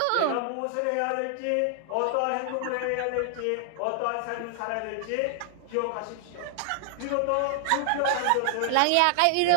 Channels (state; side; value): different; both; correlation 0.00